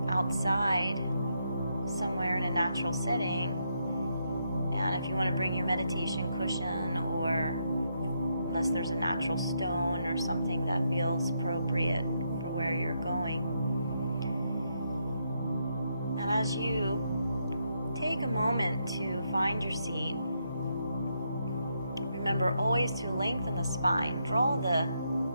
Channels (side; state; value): both; inverted; correlation -0.79